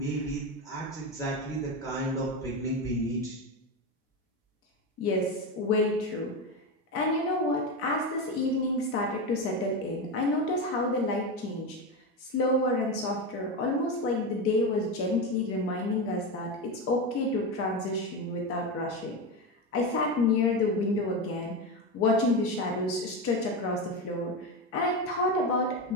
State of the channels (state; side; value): normal; both; correlation 0.16